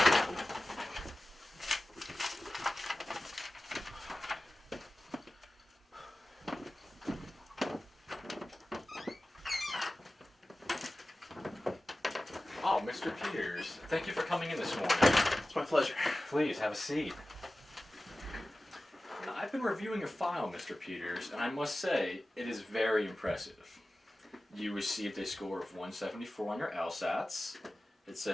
Oh, Mr. Peters, thank you for coming in this morning. It's my pleasure. Please, have a seat. Now, I've been reviewing your file, Mr. Peters, and I must say, it is very impressive. You received a score of 174 on your LSATs. It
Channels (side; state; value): both; normal; correlation 0.96